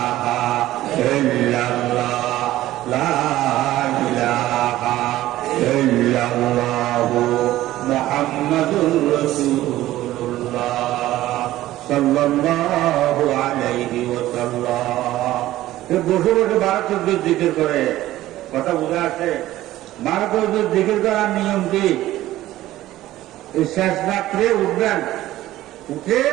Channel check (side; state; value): left; quieter; 15.1 dB